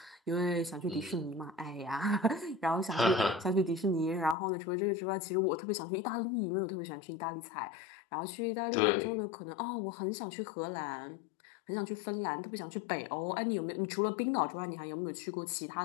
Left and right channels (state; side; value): drops out; right; at 4.4 s